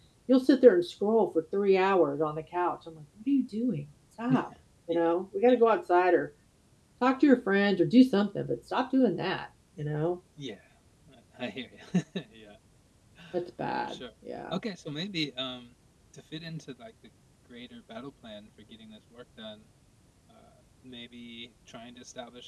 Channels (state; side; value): identical; both; correlation 1.00